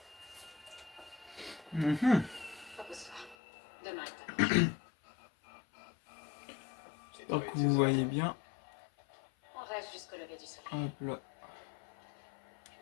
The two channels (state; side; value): drops out; right; at 3.4 s